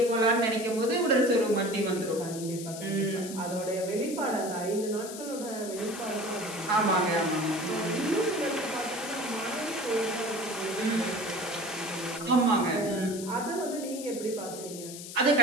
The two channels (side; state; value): left; noise; hiss, 11 dB below the sound